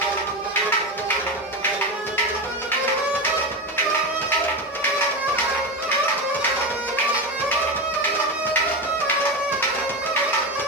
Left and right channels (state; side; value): normal; both; correlation 0.18